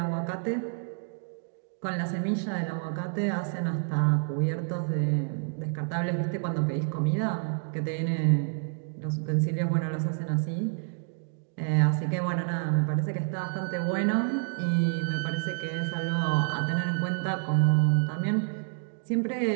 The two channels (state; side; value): silent; left; 59 dB below the other